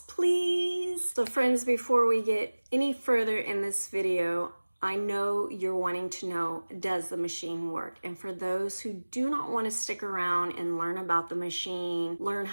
please. So friends, before we get any further in this video, I know you're wanting to know, does the machine work? And for those who do not want to stick around and learn about the machine, learn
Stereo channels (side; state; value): both; inverted; correlation -1.00